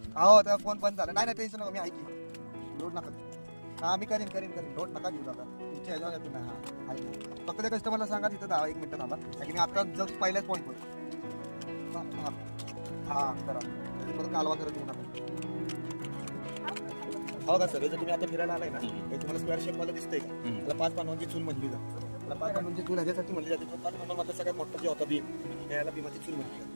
हो त्या फोन बंद झाला. नाही टेन्शन नका, मी ऐकी लोड नका. हा मी करीन लोड नका घेऊ दादा. तुमच्या ह्याच्यावर येतो ना. हा ऐक फक्त त्या कस्टमरला सांगा तिथं 1 मिनिटं थांबा. कारण मी आता जस्ट पहिल्याच पॉईंटवर हा करा. परत कालवा करत येऊ नका. हो का सर, जर तुम्ही आता फिरायला आलाय ना तुम्हाला स्क्वेअर शेप मध्ये दिसतंय का? त्याला 5 पानांची चूल म्हणली जाते. त्याला 5 पानांची चूल ह्याच्यासाठी म्हणली जाते. 5 पानांमध्ये सगळ्यात मोठा जे होता भीम, त्याला भीमाची चूल म्हणली जाते.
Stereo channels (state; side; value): inverted; both; correlation -1.00